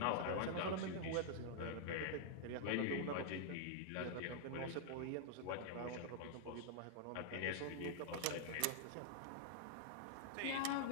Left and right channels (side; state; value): both; different; correlation -0.01